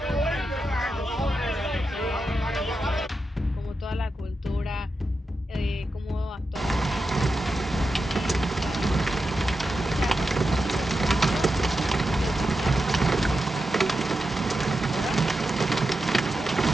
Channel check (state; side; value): normal; both; correlation 0.89